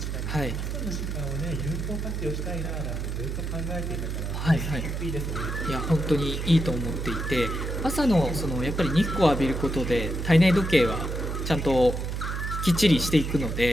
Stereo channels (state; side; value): noise; right; hum, 3 dB below the sound